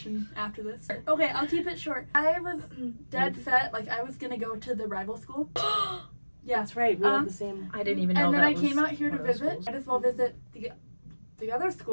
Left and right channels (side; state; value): both; inverted; correlation -1.00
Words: after this. Okay, I'll keep it short. I was dead set, like I was gonna go to the rival school. Yeah. That's right. We have the same. I didn't even know And then that I was came out here to one of those visit. schools. Might as well visit the other